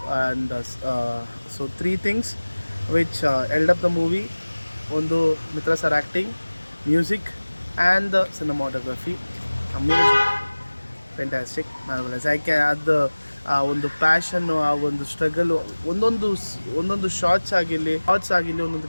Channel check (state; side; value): inverted; both; correlation -1.00